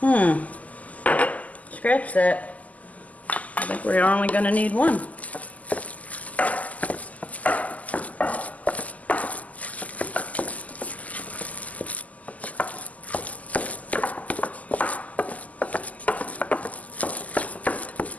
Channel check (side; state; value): right; late; 0.075 ms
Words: Scratch that. I think we're only going to need 1.